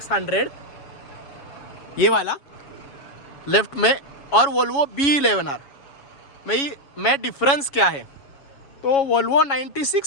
ये वाला लेफ्ट में, और वोल्वो B11R में डिफरेंस क्या है। तो वोल्वो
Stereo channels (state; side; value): late; right; 7.2 ms